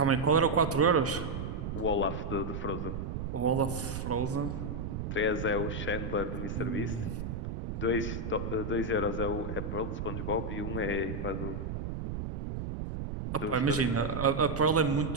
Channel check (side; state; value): right; noise; rumble, 4 dB below the sound